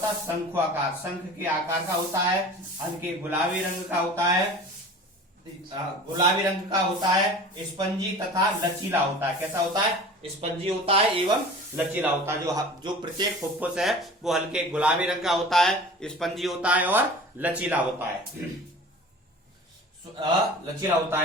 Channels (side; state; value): both; normal; correlation 0.40